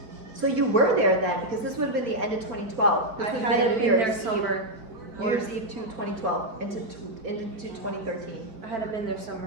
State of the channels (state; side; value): late; left; 4.7 ms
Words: So you were there then, because this would have been the end of 2012. This I would have hadn't New been there Year's summer. Eve, New Year's Eve to 2012 into 2013. I hadn't been there